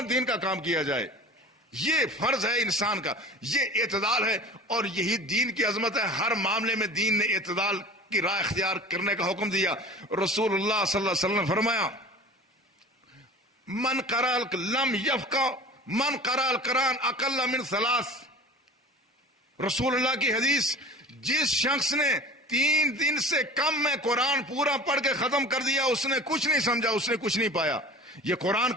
دین کا کام کیا جائے. یہ فرض ہے انسان کا، یہ اعتدال ہے، اور یہی دین کی عظمت ہے. ہر معاملے میں دین نے اعتدال کی راہ اختیار کرنے کا حکم دیا. رسول اللہ صلی اللہ علیہ وسلم نے فرمایا من قرأ لم یفقہ من قرأ القرآن اقل من ثلاث. رسول اللہ کی حدیث، جس شخص نے 3 دن سے کم میں قرآن پورا پڑھ کے ختم کر دیا اس نے کچھ نہیں سمجھا، اس نے کچھ نہیں پایا. یہ قرآن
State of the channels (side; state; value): both; normal; correlation 0.39